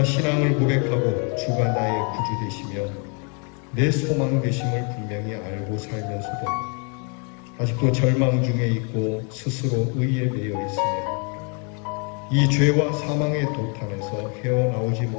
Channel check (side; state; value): right; quieter; 36.8 dB